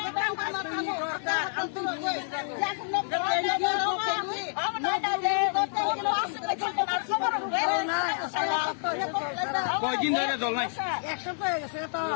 orang kana kamu antum কয়দিন ধরে জল নাই এক সপ্তাহ হয়ে গেছে তো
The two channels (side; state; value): right; silent; 59 dB below the other